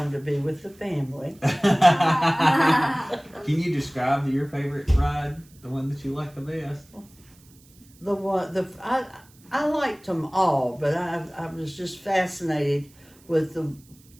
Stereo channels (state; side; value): noise; right; hiss, 28 dB below the sound